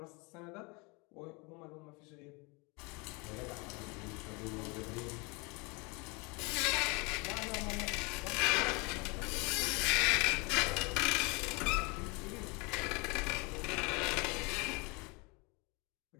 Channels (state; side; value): quieter; right; 28.9 dB